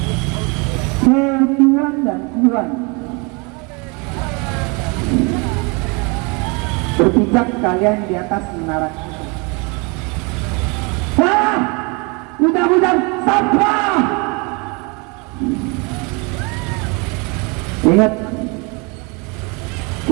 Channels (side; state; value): left; quieter; 30.4 dB